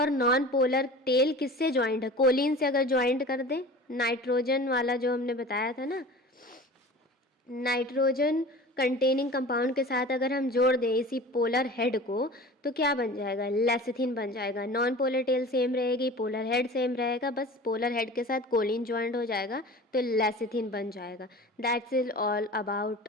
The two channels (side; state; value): both; normal; correlation 0.38